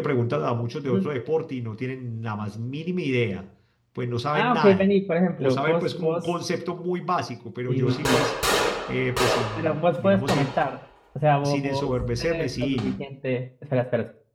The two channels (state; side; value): identical; both; correlation 1.00